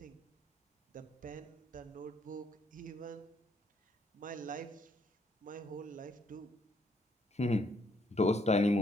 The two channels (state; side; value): normal; both; correlation 0.70